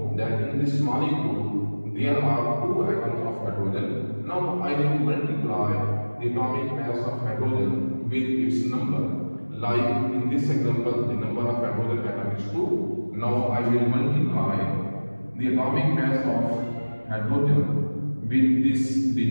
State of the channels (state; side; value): inverted; both; correlation -1.00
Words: that in this molecule there are two atoms of hydrogen. Now I will multiply the atomic mass of hydrogen with its number. Like in this example, the number of hydrogen atom is 2. Now I will multiply the atomic mass of hydrogen with this